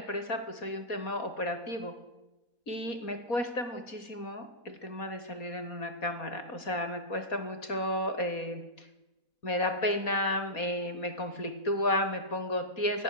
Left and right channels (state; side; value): late; right; 4.2 ms